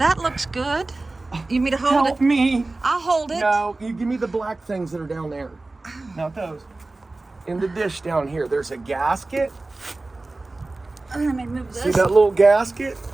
looks good. You want me to hold help it? me. I'll hold it. No, you give me the black things that are down there. Not those. In the dish down here, there's a gasket. Let me move See this. that little gasket?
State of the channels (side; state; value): left; quieter; 3.2 dB